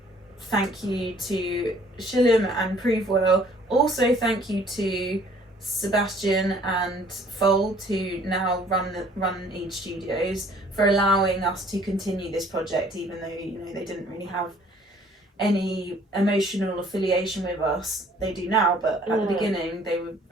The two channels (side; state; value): both; normal; correlation 0.57